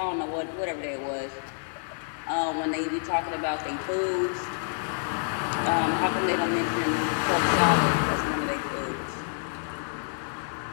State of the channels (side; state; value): right; silent; 59 dB below the other